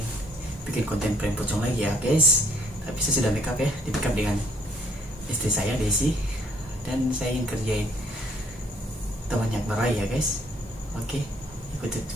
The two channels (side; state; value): both; normal; correlation 0.63